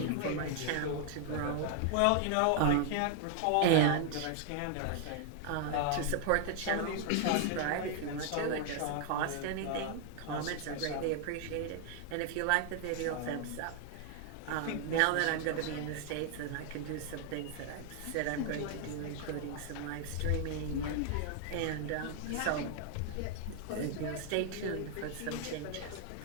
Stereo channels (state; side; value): different; both; correlation 0.00